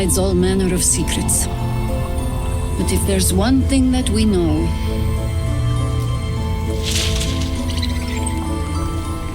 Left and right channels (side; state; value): both; identical; correlation 1.00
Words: all manner of secrets. But if there's one thing that we know,